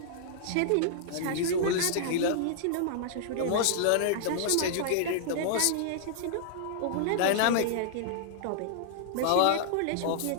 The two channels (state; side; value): different; both; correlation -0.01